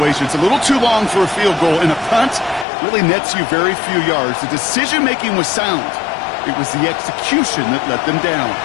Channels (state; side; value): drops out; right; at 2.7 s